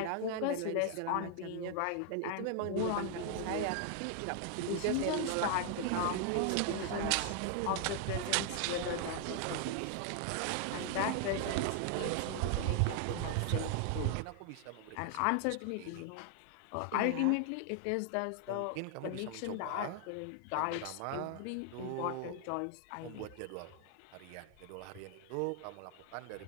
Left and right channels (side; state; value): both; different; correlation 0.00